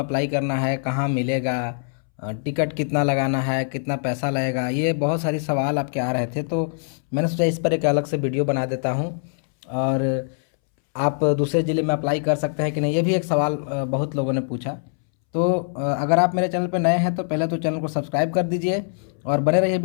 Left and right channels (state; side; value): silent; right; 63 dB below the other